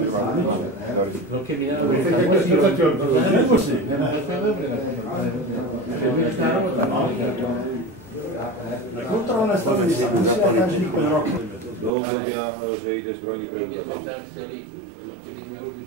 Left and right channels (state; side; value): drops out; left; at 11.9 s